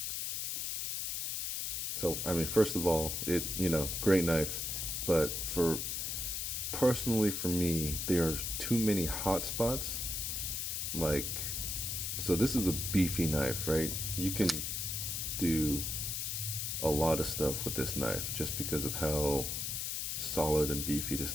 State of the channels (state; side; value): noise; left; hiss, 2 dB below the sound